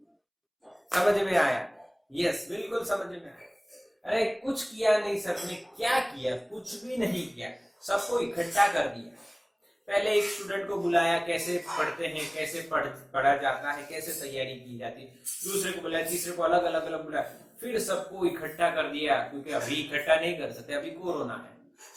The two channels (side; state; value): both; identical; correlation 1.00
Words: समझ में आया? यस, बिल्कुल समझ में आया। अरे कुछ किया नहीं सर ने, क्या किया? कुछ भी नहीं किया, सबको इकट्ठा कर दिया। पहले एक स्टूडेंट को बुलाया, कैसे पढ़ते हैं, कैसे पढ़ा जाता है, कैसे तैयारी की जाती है, दूसरे को बुलाया, तीसरे को अलग अलग बुलाया, फिर सबको इकट्ठा कर दिया, क्योंकि अभी इकट्ठा नहीं कर सकते, अभी कोरोना है।